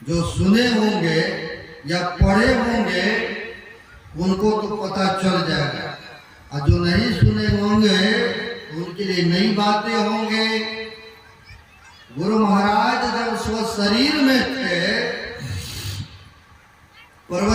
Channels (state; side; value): identical; both; correlation 1.00